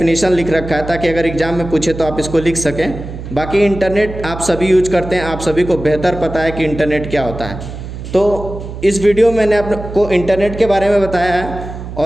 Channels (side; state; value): right; noise; hum, 10 dB below the sound